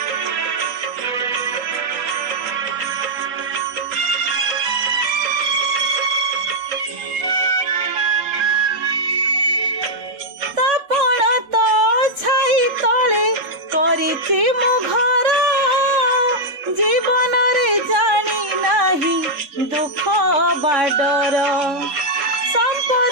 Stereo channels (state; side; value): late; left; 3.6 ms